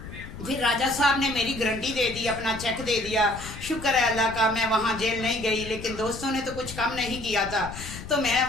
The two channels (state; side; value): noise; left; rumble, 12 dB below the sound